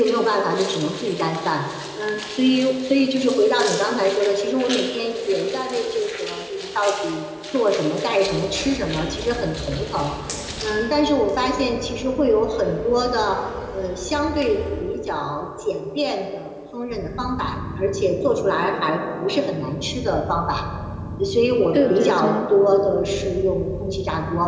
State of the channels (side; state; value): both; identical; correlation 1.00